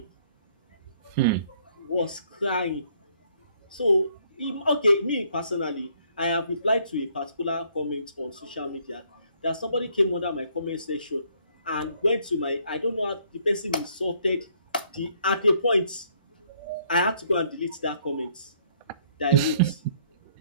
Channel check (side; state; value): both; inverted; correlation -0.65